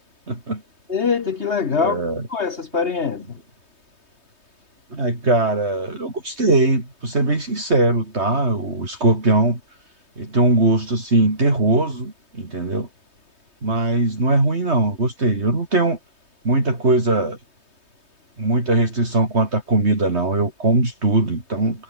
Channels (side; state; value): left; late; 3.2 ms